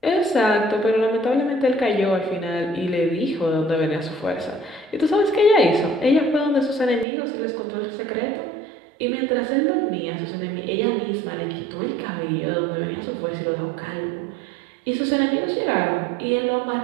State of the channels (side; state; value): left; drops out; at 7.1 s